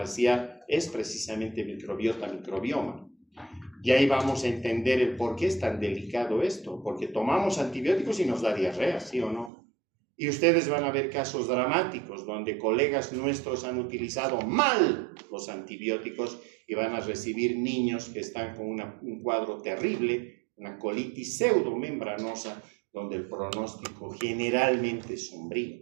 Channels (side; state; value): left; drops out; at 9.5 s